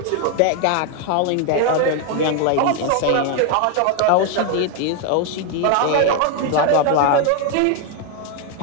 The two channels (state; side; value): different; both; correlation 0.01